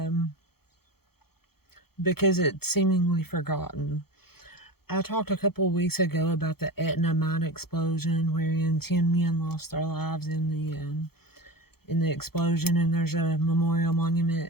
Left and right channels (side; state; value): right; late; 0.95 ms